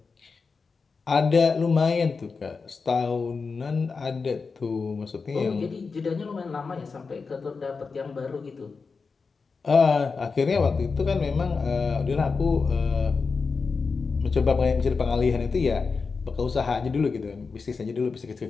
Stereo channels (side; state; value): right; quieter; 4.7 dB